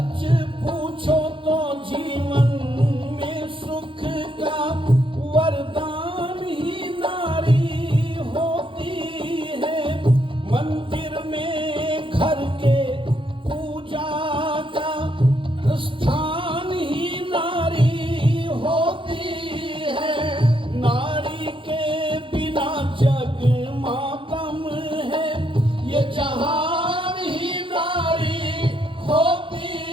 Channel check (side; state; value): left; late; 0.25 ms